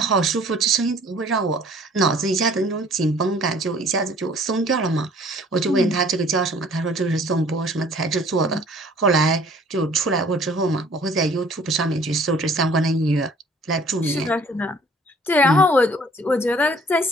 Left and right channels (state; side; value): normal; both; correlation 0.54